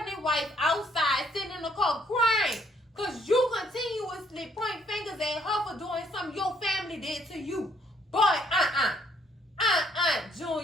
wife outside sitting in the car crying. Because you continuously point fingers at her for doing something your family did to you. But,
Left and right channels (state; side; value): normal; both; correlation 0.67